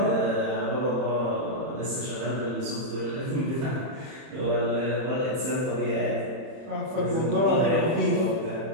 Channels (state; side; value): late; left; 31 ms